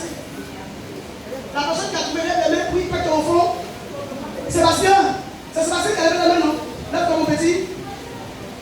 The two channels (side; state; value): both; identical; correlation 1.00